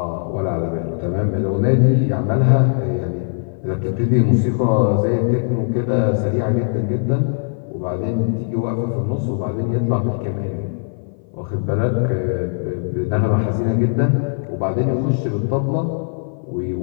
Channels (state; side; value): silent; right; 57 dB below the other